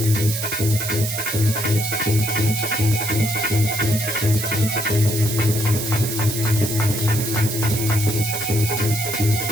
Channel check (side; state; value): right; noise; hiss, 4 dB below the sound